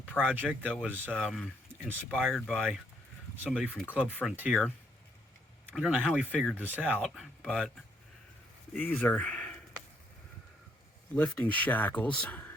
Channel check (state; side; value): normal; both; correlation 0.71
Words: project that was inspired by somebody from Club Frontier. I don't know how he figured this out, but these are lifting shackles.